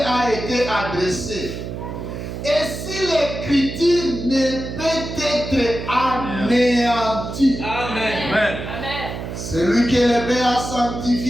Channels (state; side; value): noise; right; hum, 7 dB below the sound